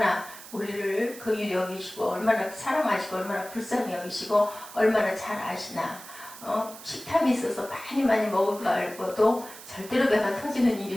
우리를 긍휼히 여기시고 얼마나 사랑하시고 얼마나 불쌍히 여기시고 얼마나 잘 아시나. 식탐이 있어서 많이 먹을 거 알고도 절대로 배가 터지는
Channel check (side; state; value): right; noise; hiss, 16 dB below the sound